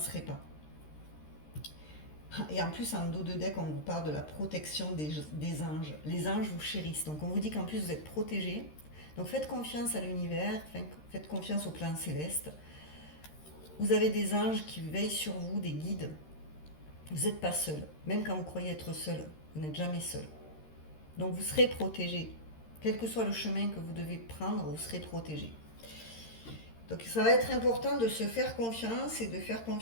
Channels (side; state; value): right; late; 13 ms